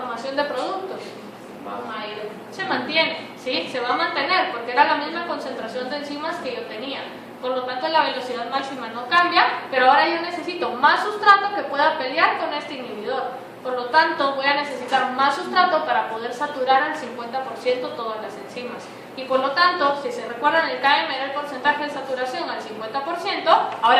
de productos? Se mantiene, ¿sí? Se va a mantener, porque era la misma concentración de enzimas que yo tenía. Por lo tanto, la velocidad máxima no cambia, pero ahora yo necesito más sustrato que pueda pelear con este inhibidor. Por lo tanto, voy a necesitar más sustrato para poder saturar al 50% todas las enzimas. Y por lo tanto, si se recuerdan, el KM era el porcentaje de saturación al 50%,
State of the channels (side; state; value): both; identical; correlation 1.00